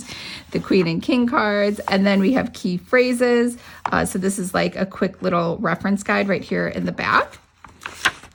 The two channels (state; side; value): identical; both; correlation 1.00